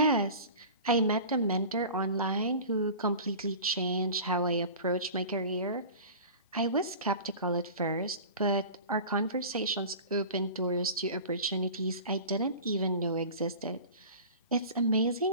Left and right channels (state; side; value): inverted; both; correlation -0.37